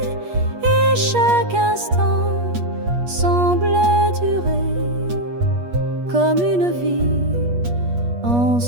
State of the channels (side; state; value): left; late; 8.4 ms